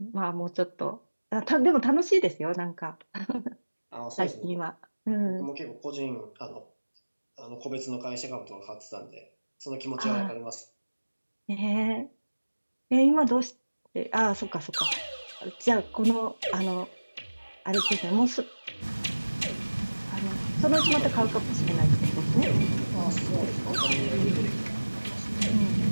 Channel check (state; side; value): inverted; both; correlation -1.00